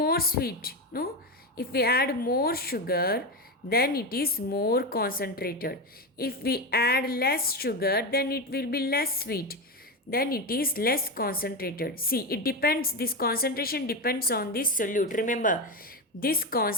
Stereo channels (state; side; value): normal; both; correlation 0.15